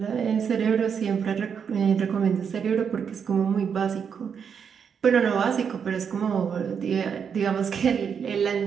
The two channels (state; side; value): quieter; left; 7.0 dB